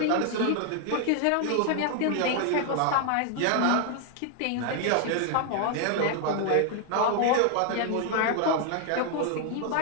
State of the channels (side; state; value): both; different; correlation 0.00